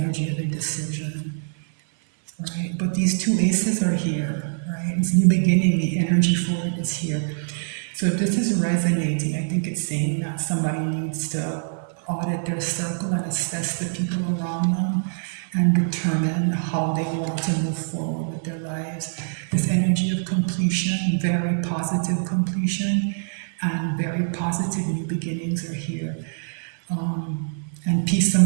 of indecision, right? But these two aces are here, right? It's new beginning. The energy for it is here. So if this is resonating, I think it's saying that somebody needs to audit their circle and assess the people around them and determine how they want to move forward with their lives. This energy of completion, very positive completion, and very positive new beginnings are here. And peace,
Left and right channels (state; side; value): silent; left; 57 dB below the other